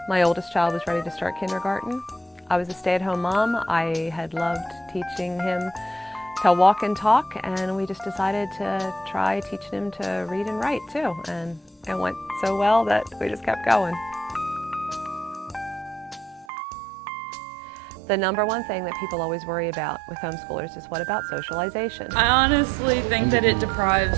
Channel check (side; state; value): left; drops out; at 16.4 s